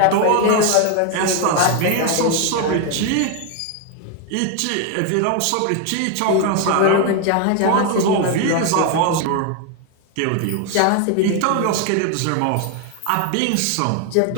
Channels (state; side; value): different; both; correlation 0.01